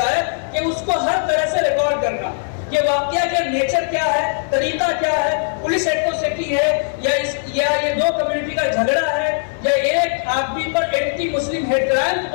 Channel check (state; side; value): silent; right; 66 dB below the other